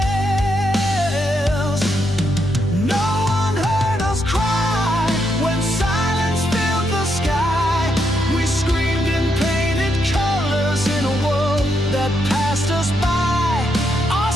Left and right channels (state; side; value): normal; both; correlation 0.79